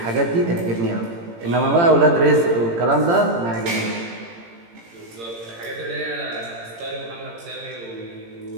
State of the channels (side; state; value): left; late; 18 ms